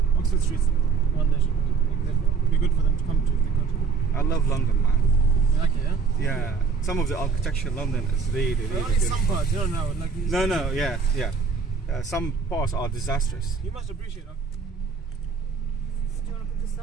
Oxford Street's one nation. It'd be good for them to come to the country. I love London, man. You like it, yeah? Yeah. Some of the architecture in London is really, really only good. some parts, you don't know. Like No, yeah. Some parts are disastrous. You must appreciate that. Do you want to put this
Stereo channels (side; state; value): left; quieter; 5.3 dB